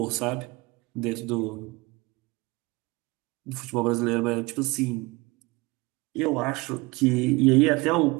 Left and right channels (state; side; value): quieter; left; 23.8 dB